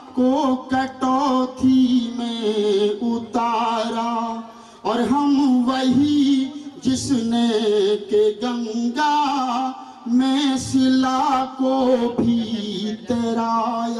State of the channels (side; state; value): both; identical; correlation 1.00